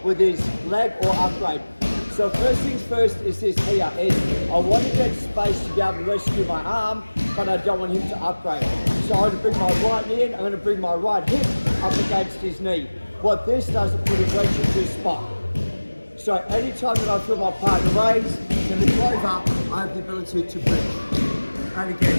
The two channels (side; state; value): both; inverted; correlation -1.00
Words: with his leg or upgrade. So first things first is this here, is I want to get space to be able to rescue my arm, but I don't want him to upgrade. So I'm going to bring my right knee in, I'm going to bring my right hip up against his knee. What this does is put a wedge into a spot. So anytime that I feel my partner raise to lift over, I have the ability to bridge. And